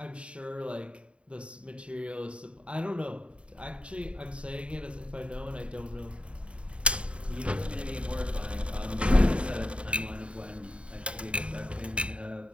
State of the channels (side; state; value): left; late; 0.060 ms